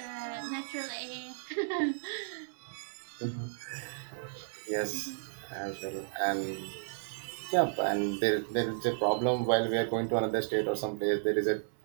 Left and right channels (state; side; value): silent; left; 56 dB below the other